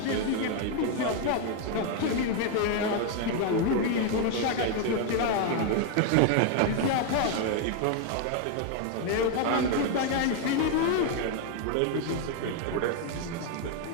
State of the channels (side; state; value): both; different; correlation 0.00